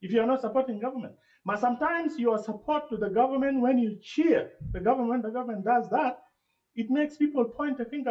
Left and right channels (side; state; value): both; identical; correlation 1.00